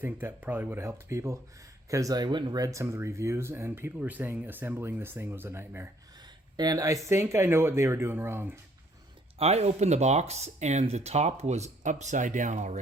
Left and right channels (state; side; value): normal; both; correlation 0.63